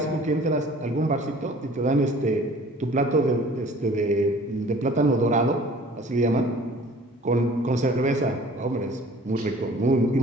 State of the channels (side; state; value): both; normal; correlation 0.50